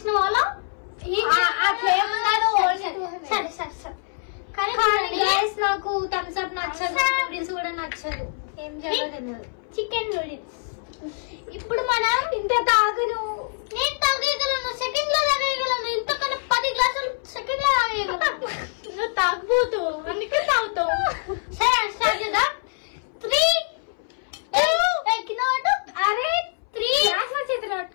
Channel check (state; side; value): silent; right; 62 dB below the other